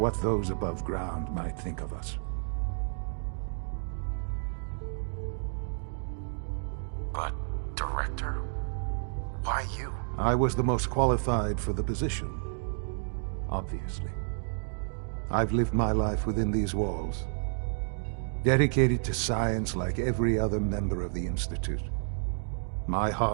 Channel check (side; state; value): left; silent; digital silence